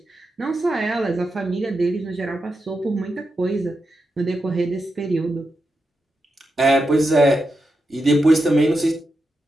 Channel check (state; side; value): normal; both; correlation 0.88